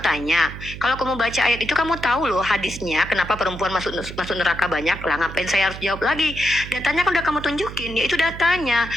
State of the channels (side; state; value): right; noise; hum, 11 dB below the sound